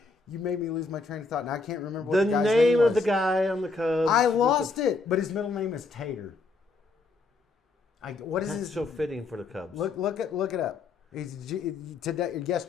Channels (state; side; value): quieter; right; 3.8 dB